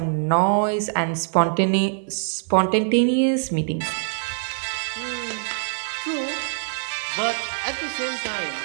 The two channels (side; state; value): left; silent; 63 dB below the other